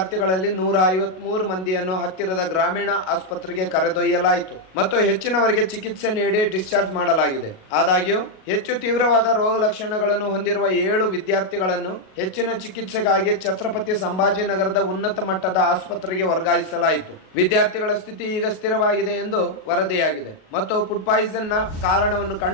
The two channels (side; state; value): right; late; 38 ms